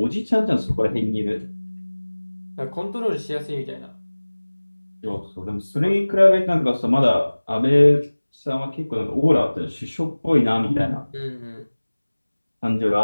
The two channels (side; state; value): both; inverted; correlation -1.00